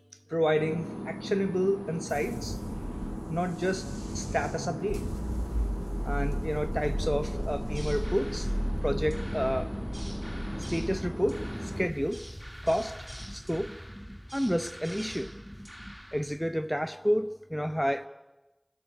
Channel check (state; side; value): identical; both; correlation 1.00